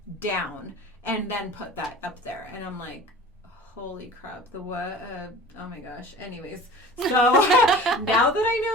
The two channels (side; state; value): both; normal; correlation 0.41